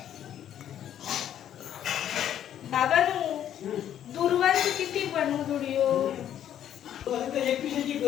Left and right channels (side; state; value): right; quieter; 10.5 dB